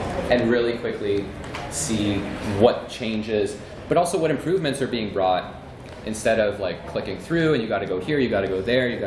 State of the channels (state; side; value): identical; both; correlation 1.00